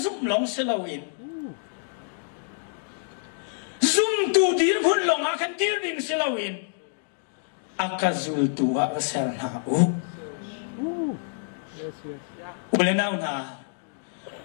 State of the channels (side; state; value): right; silent; digital silence